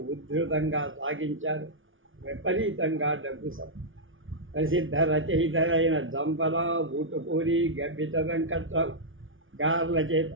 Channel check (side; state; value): left; late; 0.57 ms